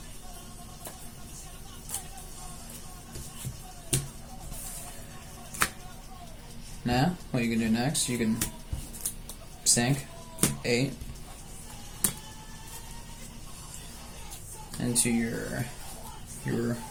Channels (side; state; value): both; identical; correlation 1.00